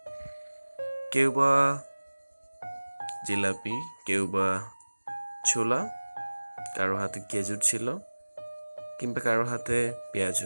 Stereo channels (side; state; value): both; inverted; correlation -1.00